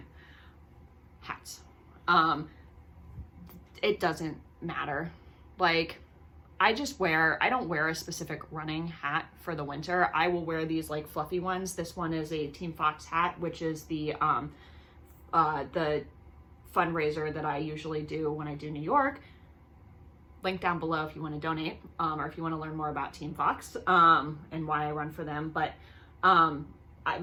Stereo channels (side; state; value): both; identical; correlation 1.00